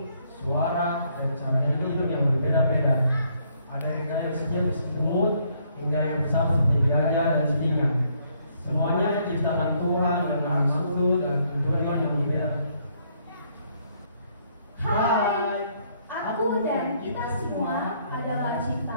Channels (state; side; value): inverted; both; correlation -0.69